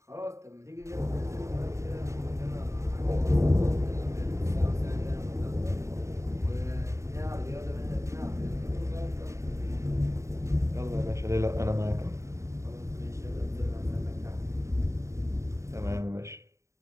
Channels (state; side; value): late; left; 0.14 ms